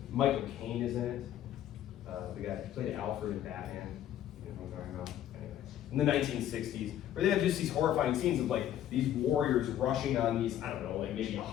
Michael Caine is in it. The guy who played Alfred in Batman. You know what I'm talking about? Anyway. In the 1960s, where they have just these horrifying scenes of like these warriors rushing on these, I don't know, like maybe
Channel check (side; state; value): right; quieter; 11.5 dB